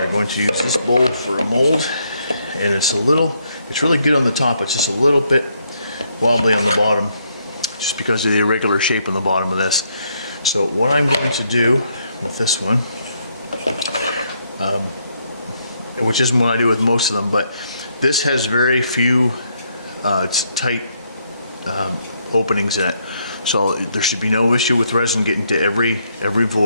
going to use this bowl for a mold, and it's really good on the top, it's just a little bit wobbly on the bottom just because of the irregular shape on the bottom of this. So what I'm going to do with this one, which isn't what I do with most of them, but this has very few tight openings in it, so there should be no issue with resin getting to every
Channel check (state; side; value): inverted; both; correlation -0.74